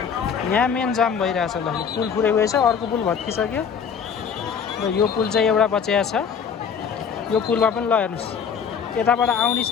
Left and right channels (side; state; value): right; quieter; 6.9 dB